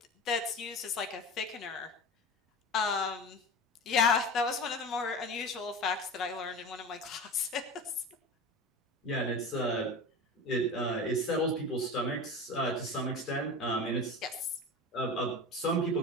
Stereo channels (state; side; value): normal; both; correlation 0.30